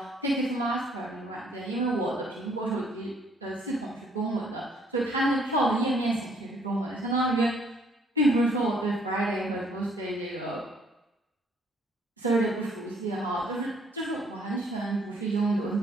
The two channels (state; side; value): normal; both; correlation 0.64